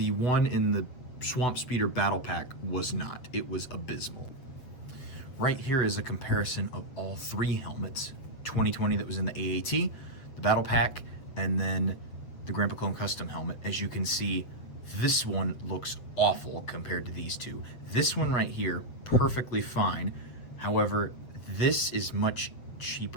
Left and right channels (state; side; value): late; right; 7.8 ms